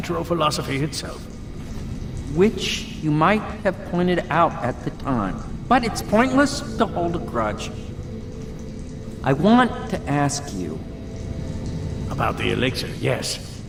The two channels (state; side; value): identical; both; correlation 1.00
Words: philosophy itself. Which you might have pointed out at the time. But it's pointless to hold a grudge. I want to ask you... About the elixir, yes.